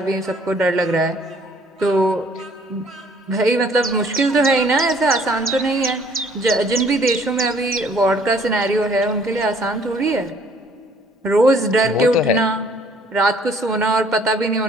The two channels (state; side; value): normal; both; correlation 0.59